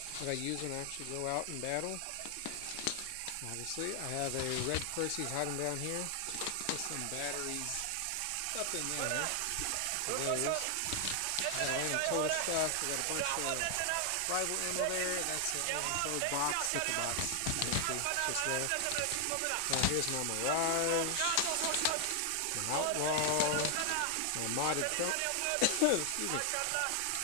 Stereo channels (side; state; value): both; different; correlation 0.00